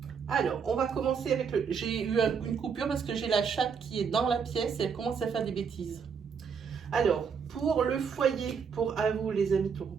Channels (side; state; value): left; quieter; 6.3 dB